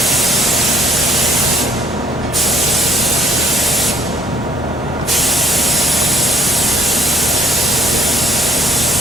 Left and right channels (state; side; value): normal; both; correlation 0.59